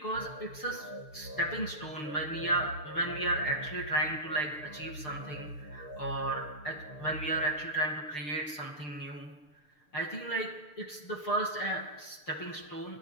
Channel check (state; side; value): late; right; 6.7 ms